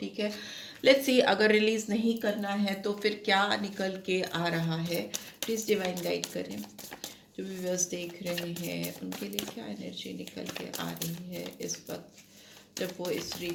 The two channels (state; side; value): identical; both; correlation 1.00